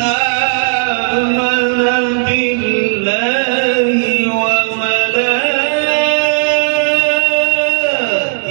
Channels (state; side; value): silent; left; digital silence